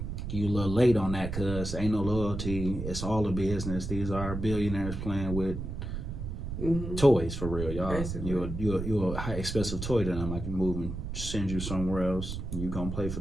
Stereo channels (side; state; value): right; noise; rumble, 5 dB below the sound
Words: you a little late on that because ain't no loyalty. It's all a business. These are billionaires playing with toys for real, y'all. You're a high expensive toy to them. I can move and send you somewhere else. You gonna play for